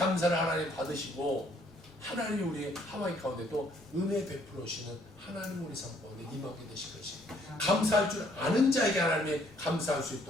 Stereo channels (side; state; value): both; normal; correlation 0.65